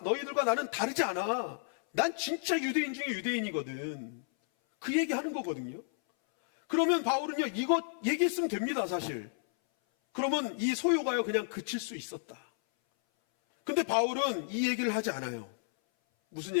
나는 다르지 않아. 난 진짜 유대인 중에 유대인이거든. 그 얘기하는 거거든요. 그러면 바울은요 이거 얘기했으면 됩니다 사실. 그러면 이 소요가요 그냥 그칠 수 있었다. 근데 바울은 이 얘기를 하지 않아요. 무슨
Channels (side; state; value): right; silent; 56 dB below the other